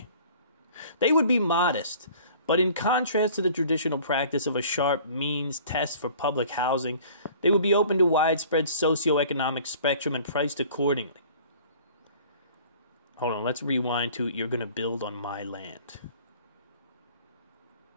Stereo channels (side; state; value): both; inverted; correlation -0.49